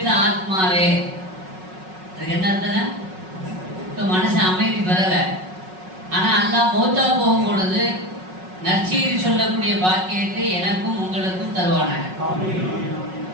ஆத்மாவே. அதுக்கு என்ன அர்த்தம்? இப்போ மனசு அமைதி பெறல, ஆனா அல்லாஹ் மௌத்தா போகும் பொழுது நற்செய்தி சொல்லக்கூடிய பாக்கியத்தை எனக்கும் உங்களுக்கும் தருவானாங்க.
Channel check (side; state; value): left; late; 5.4 ms